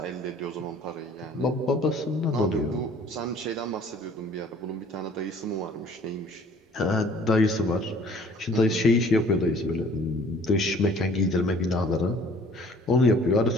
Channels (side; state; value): both; normal; correlation 0.54